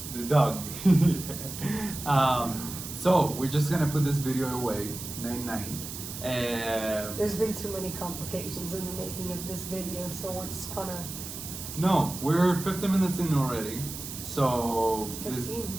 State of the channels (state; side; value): noise; right; hiss, 9 dB below the sound